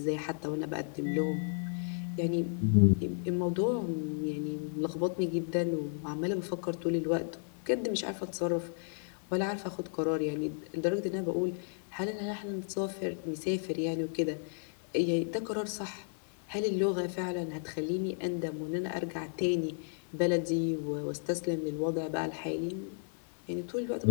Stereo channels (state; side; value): silent; right; digital silence